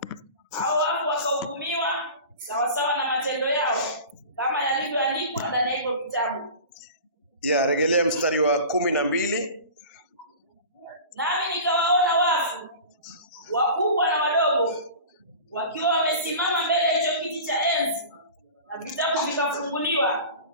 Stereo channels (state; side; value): inverted; both; correlation -0.37